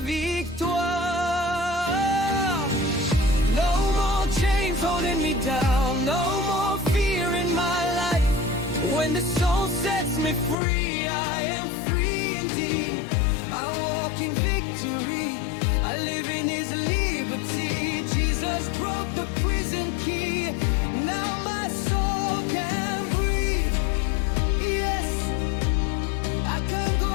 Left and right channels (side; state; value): right; drops out; at 10.6 s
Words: No more chains holding me down, no more fear in my life. When the soul sets me free, I am free indeed. I walk in victory, I live in His liberty. Jesus Jesus broke the prison key. Now my soul can breathe. Yes, I can go